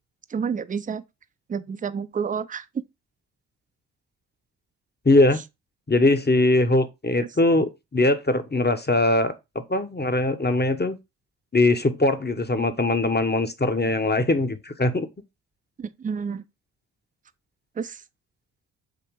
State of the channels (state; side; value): normal; both; correlation 0.44